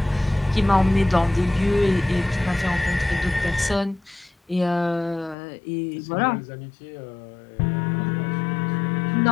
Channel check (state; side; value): drops out; right; at 5.4 s